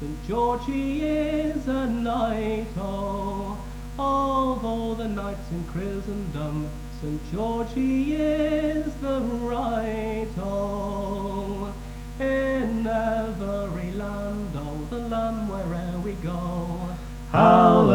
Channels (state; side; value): identical; both; correlation 1.00